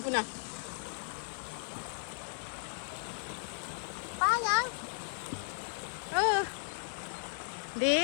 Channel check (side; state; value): right; silent; digital silence